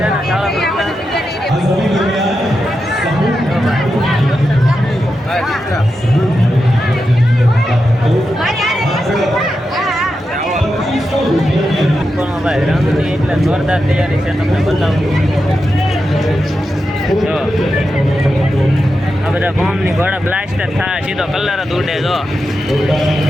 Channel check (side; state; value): both; normal; correlation 0.88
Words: भाई रंगनी એટલે જોરદાર તૈયારી છે, તમને બતાવું જો આ બધા બોમ્બની ઘોડા બ્લાસ્ટર થાય, સીધો કલર જ ઉડે। જો